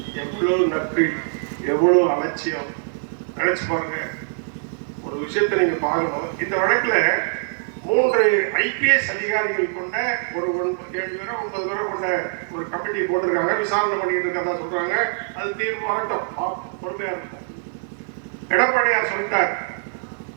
எவ்வளவு நட்பு, எவ்வளவு அலட்சியம் நினைச்சு பாருங்க. ஒரு விஷயத்தை நீங்க பார்க்கணும். இந்த வழக்குல 3 IPS அதிகாரிகள் கொண்ட ஒரு 7 பேரோ 9 பேரோ கொண்ட ஒரு கமிட்டி போட்டிருக்காங்க, விசாரணை பண்ணிட்டு இருக்கிறதா சொல்றாங்க. அது தீர்ப்பு வரட்டும், பொறுமையா இருக்கும். எடப்பாடியார் சொல்லிட்டார்,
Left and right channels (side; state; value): left; silent; 63 dB below the other